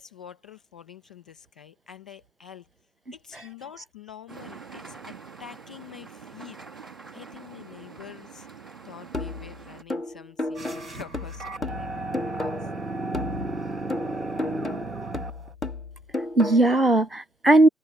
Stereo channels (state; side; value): normal; both; correlation 0.70